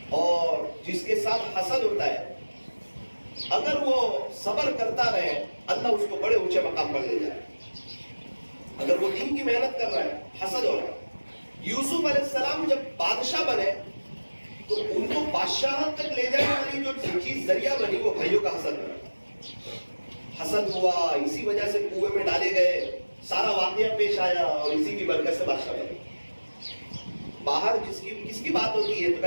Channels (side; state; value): both; inverted; correlation -1.00